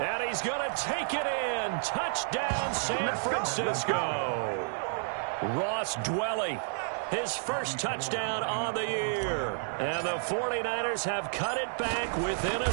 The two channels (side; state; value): left; silent; digital silence